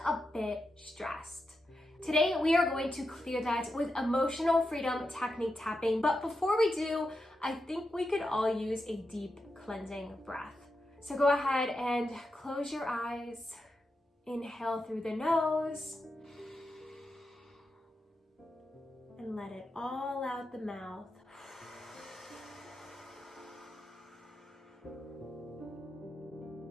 a bit stressed. Today, we are going to clear that with emotional freedom technique tapping. But before we do, I think we could all use a deep cleansing breath. So go ahead and close your eyes. Inhale through the nose. And let it all out the mouth.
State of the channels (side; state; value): both; normal; correlation 0.88